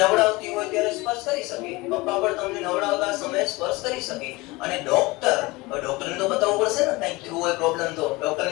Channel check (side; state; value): right; quieter; 22.8 dB